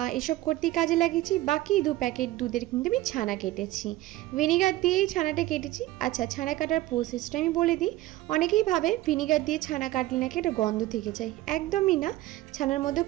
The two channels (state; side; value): quieter; left; 16.4 dB